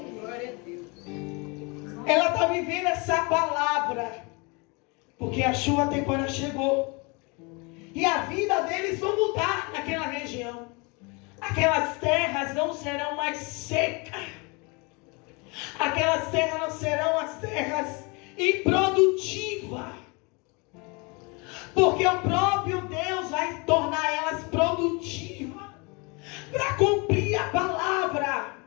Ela está vivendo essa palavra, porque a chuva temporária chegou. E a vida deles vai mudar naquela região. Aquelas terras não serão mais secas. Aquelas terras não serão as terras improdutivas. Porque o próprio Deus vai tornar elas produtivas. Para cumprir a palavra.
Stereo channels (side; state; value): right; quieter; 29.5 dB